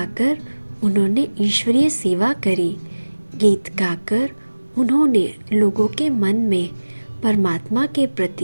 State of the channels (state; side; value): inverted; both; correlation -1.00